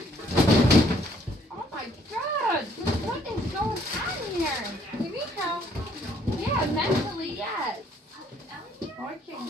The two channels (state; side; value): normal; both; correlation 0.64